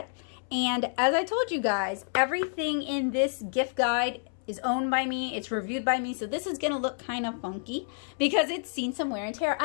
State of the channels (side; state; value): right; silent; 59 dB below the other